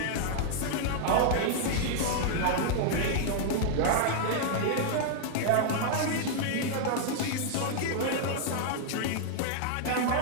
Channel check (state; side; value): different; both; correlation 0.00